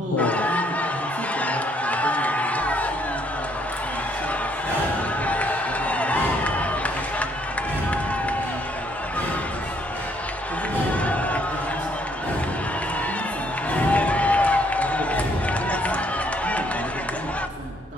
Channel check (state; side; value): normal; both; correlation 0.68